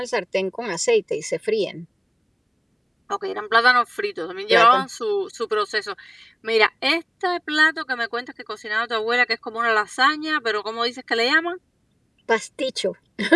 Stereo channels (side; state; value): both; identical; correlation 1.00